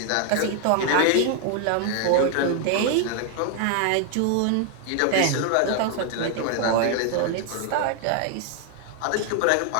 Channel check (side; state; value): both; different; correlation 0.00